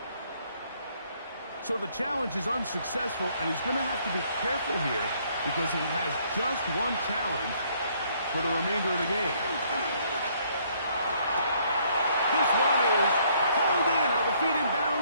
So the challenge is unsuccessful, and he's going to have to be careful here because he has just one challenge for the remainder of the game. This one is hauled in. Are the feet in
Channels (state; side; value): inverted; both; correlation -0.66